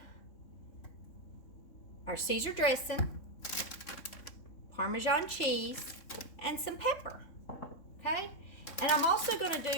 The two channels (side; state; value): right; late; 3.6 ms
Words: our Caesar dressing, Parmesan cheese, and some pepper. Okay, and I'm also going to